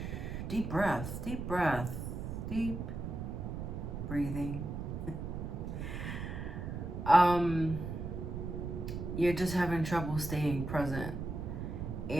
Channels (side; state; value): right; noise; rumble, 5 dB below the sound